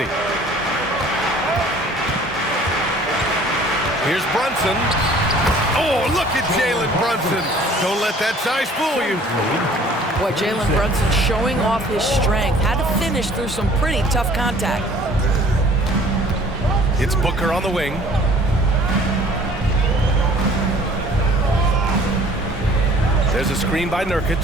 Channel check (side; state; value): both; normal; correlation 0.52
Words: Here's Brunson. Oh, look at Jalen Brunson. Don't let that size fool you. Boy, Jalen Brunson showing off his strength. Had to finish through some pretty tough contact. It's Booker on the wing. There's a screen by Nurkic.